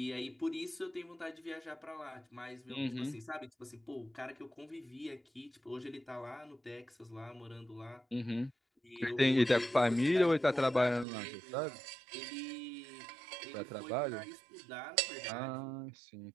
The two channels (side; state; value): left; drops out; at 11.1 s